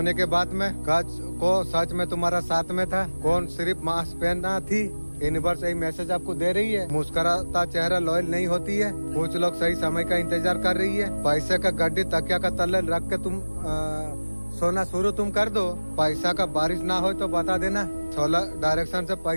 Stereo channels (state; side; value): inverted; both; correlation -1.00